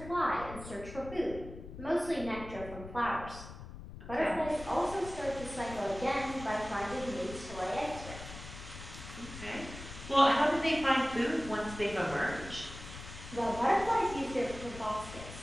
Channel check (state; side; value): noise; left; rumble, 12 dB below the sound